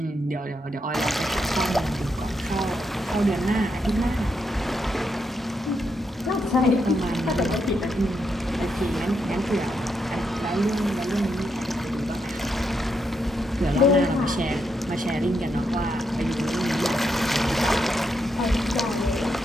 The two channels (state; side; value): normal; both; correlation 0.81